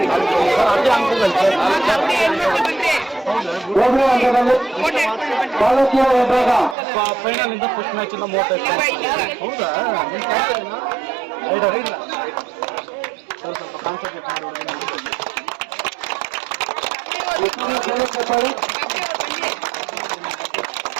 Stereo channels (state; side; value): drops out; left; at 6.8 s